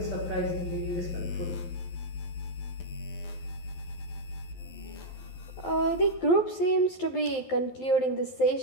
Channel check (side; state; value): right; late; 12 ms